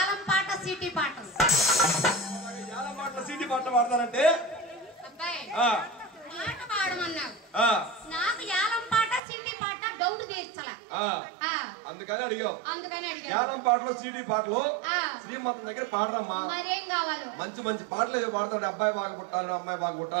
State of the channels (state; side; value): drops out; left; at 9.2 s